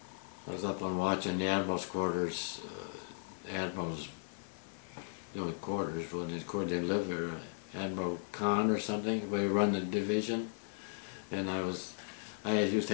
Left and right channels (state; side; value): silent; right; 53 dB below the other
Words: I was up on watching the admiral's quarters. Admiral's quarters when they lived there. Admiral Khan or something, where he run the division. And I used to